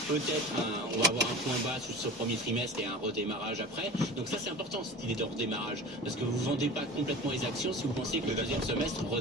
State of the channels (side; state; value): both; normal; correlation 0.35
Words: Peut-être on va avoir un point bas sur ce premier trimestre et un redémarrage après. Donc ça c'est important cette idée de redémarrage, parce que vous ne vendez pas complètement les actions si vous pensez que le deuxième semestre